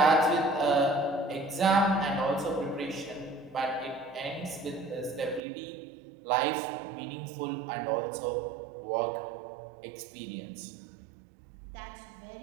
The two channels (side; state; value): left; drops out; at 5.4 s